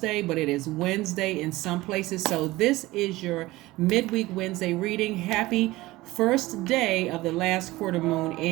but it is Wednesday in some places. So this is your midweek Wednesday reading. Happy first day of the last quarter moon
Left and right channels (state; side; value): quieter; left; 18.9 dB